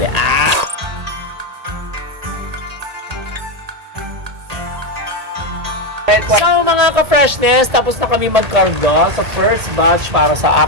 Ah! So mga ka-freshness, tapos na kami magkarga sa first batch para sa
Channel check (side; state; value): left; late; 1.8 ms